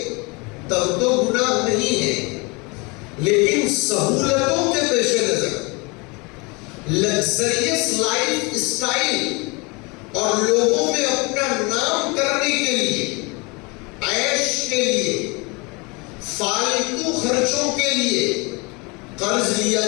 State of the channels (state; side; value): quieter; right; 28.0 dB